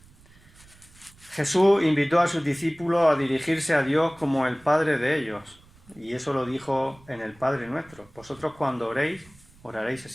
Jesús invitó a sus discípulos a dirigirse a Dios como el Padre de ellos. Y eso lo dijo en el Padre Nuestro. Vosotros cuando oréis, oraréis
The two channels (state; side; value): noise; right; rumble, 26 dB below the sound